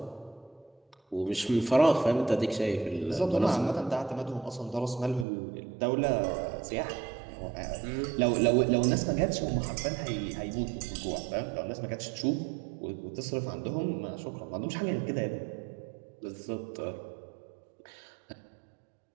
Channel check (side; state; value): left; drops out; at 5.2 s